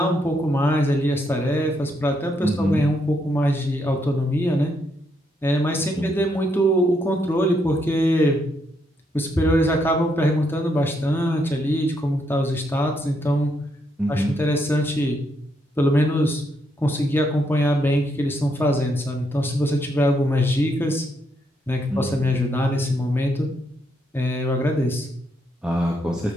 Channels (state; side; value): normal; both; correlation 0.76